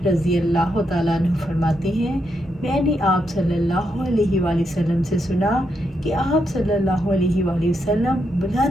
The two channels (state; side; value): normal; both; correlation 0.81